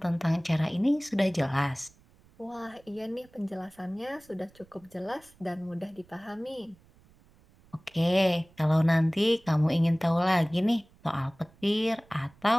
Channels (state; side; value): noise; right; rumble, 29 dB below the sound